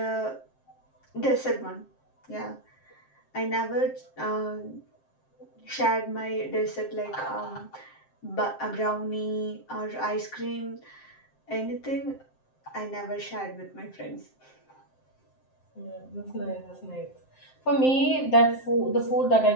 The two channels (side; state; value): right; late; 7.6 ms